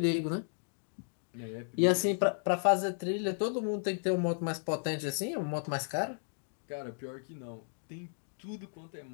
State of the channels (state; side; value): silent; right; digital silence